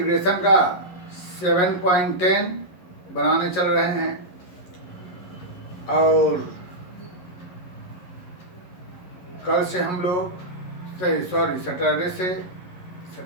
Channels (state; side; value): late; right; 11 ms